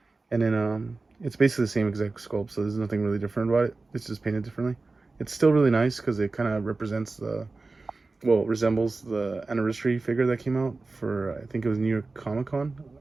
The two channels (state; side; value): quieter; left; 3.6 dB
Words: And then it's basically the same exact sculpt, so there's nothing really different about it. It's just painted differently. It's still really nice because it kind of represents resembles the anniversary figure that came out for, I think it was New York Comic Con.